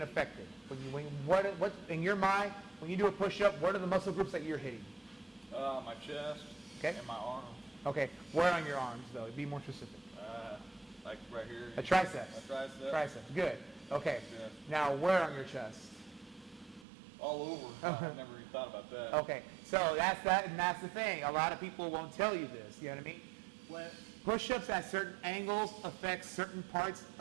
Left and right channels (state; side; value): drops out; left; at 16.9 s